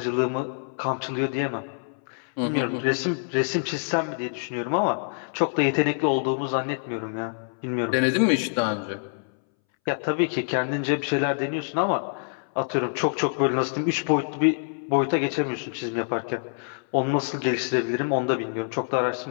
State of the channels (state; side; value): silent; right; 61 dB below the other